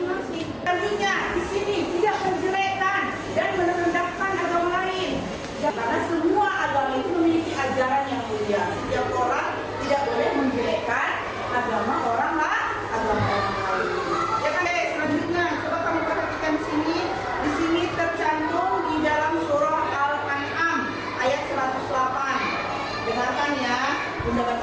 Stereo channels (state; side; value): identical; both; correlation 1.00